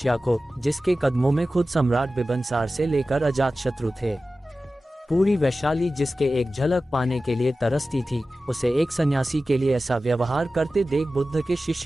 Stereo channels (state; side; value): normal; both; correlation 0.95